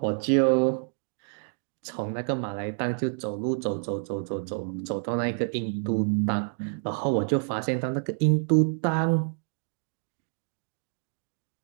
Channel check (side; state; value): left; silent; digital silence